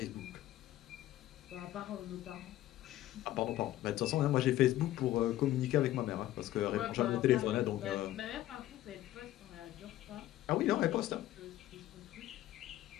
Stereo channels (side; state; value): right; quieter; 14.4 dB